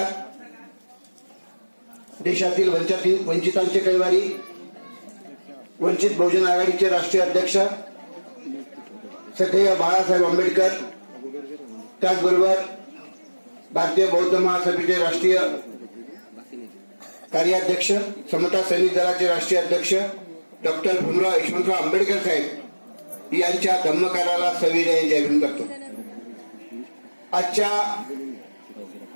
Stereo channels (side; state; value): both; inverted; correlation -1.00